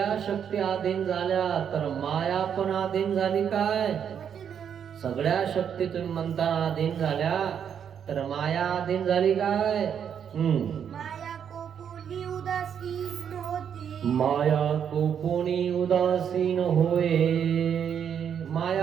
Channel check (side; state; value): left; quieter; 8.2 dB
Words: शक्ती अधीन झाल्या तर माया पण अधीन झाली काय? वचन. सगळ्या शक्ती तुम्ही म्हणता अधीन झाल्या तर माया अधीन झाली काय? माया कोपुनी उदासीन होती. माया कोपुनी उदासीन होय.